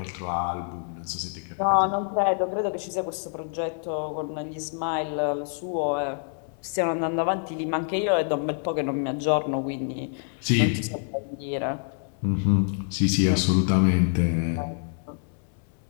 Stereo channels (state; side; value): silent; right; 56 dB below the other